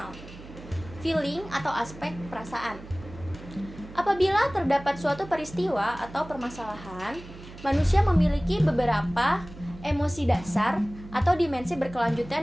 feeling atau aspek perasaan. Apabila terdapat suatu peristiwa atau permasalahan, manusia memiliki beberapa emosi dasar atau dimensi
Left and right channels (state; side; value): noise; right; hum, 16 dB below the sound